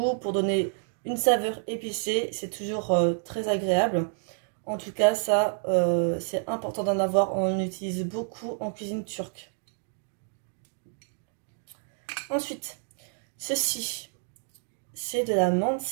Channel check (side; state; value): left; silent; digital silence